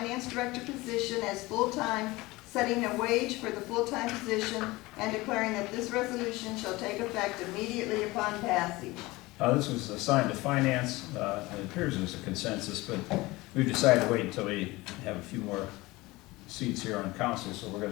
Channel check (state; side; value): quieter; right; 21.0 dB